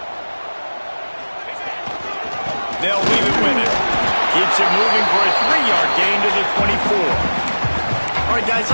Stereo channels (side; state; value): both; inverted; correlation -1.00